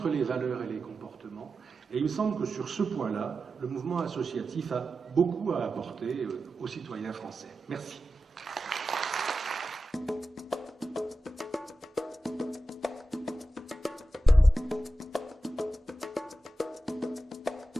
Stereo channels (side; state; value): both; normal; correlation 0.92